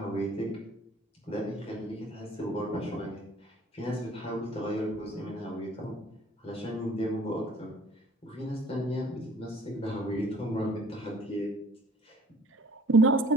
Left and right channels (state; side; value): normal; both; correlation 0.53